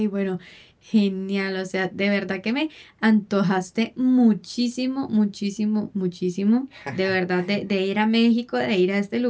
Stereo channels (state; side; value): identical; both; correlation 1.00